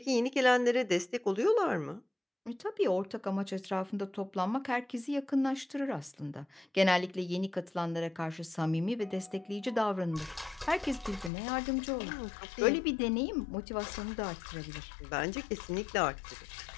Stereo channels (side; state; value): right; drops out; at 11.3 s